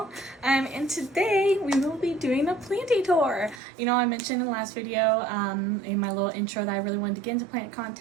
And today we will be doing a planty tour. You know, I mentioned in the last video, in my little intro, that I really wanted to get into plant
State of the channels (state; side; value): drops out; left; at 3.6 s